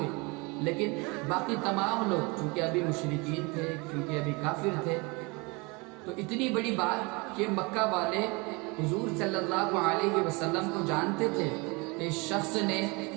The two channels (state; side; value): quieter; left; 27.5 dB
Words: لیکن باقی تمام لوگ چونکہ ابھی مشرکین تھے، کیونکہ بھی کافر تھے. تو اتنی بڑی بات کہ مکہ والے حضور صلی اللہ علیہ وسلم کو جانتے تھے کہ اس شخص نے